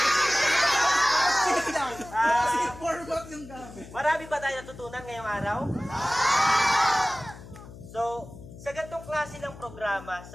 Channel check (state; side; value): noise; left; hum, 16 dB below the sound